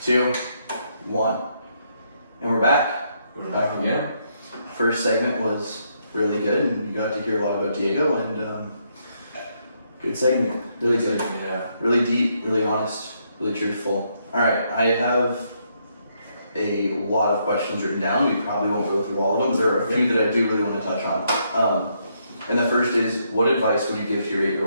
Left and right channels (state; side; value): inverted; both; correlation -0.75